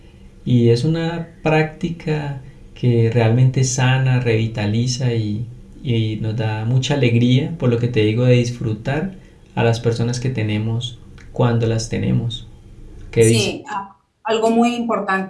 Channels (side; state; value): both; identical; correlation 1.00